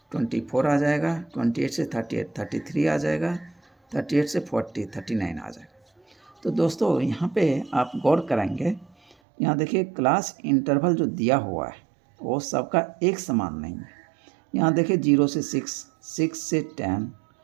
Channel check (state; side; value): drops out; left; at 9.2 s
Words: 24 आ जाएगा। 28 से 38 33 आ जाएगा। 38 से 40 39 आ जाएगा। तो दोस्तों यहाँ पे आप गौर करेंगे, यहाँ देखिए क्लास इंटरवल जो दिया हुआ है वो सबका एक समान नहीं है। यहाँ देखिए 0 से 6, 6 से 10